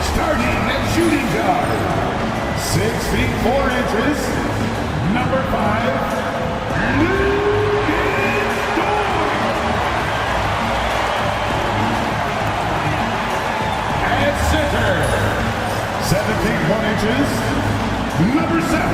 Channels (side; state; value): both; identical; correlation 1.00